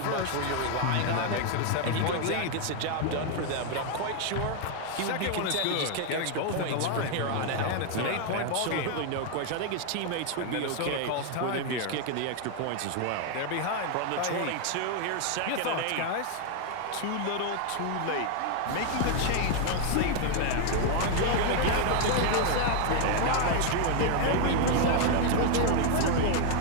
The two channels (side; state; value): both; different; correlation 0.00